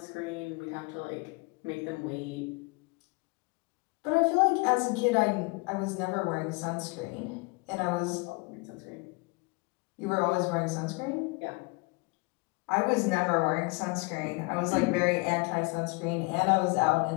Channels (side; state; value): right; quieter; 27.9 dB